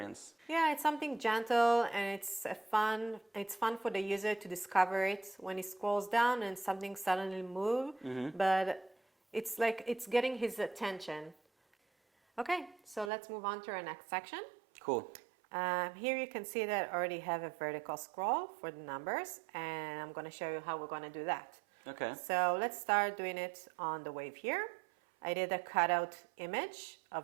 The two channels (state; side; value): drops out; left; at 13.1 s